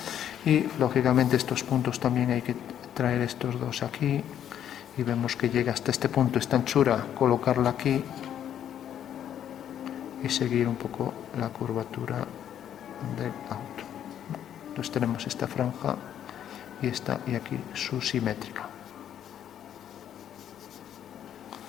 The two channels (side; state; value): right; quieter; 10.0 dB